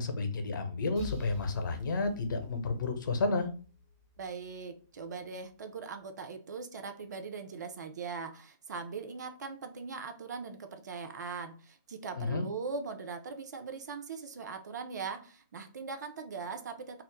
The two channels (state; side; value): inverted; both; correlation -0.56